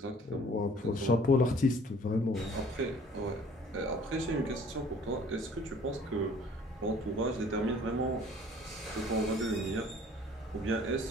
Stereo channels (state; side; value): normal; both; correlation 0.53